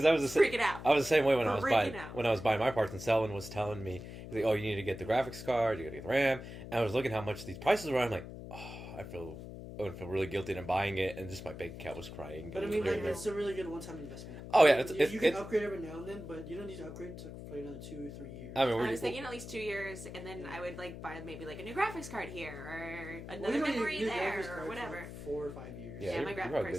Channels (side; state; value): left; noise; hum, 11 dB below the sound